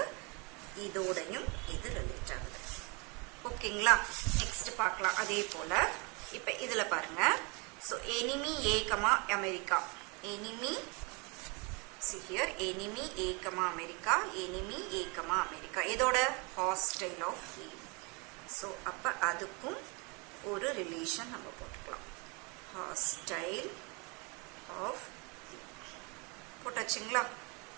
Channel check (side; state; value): left; quieter; 30.7 dB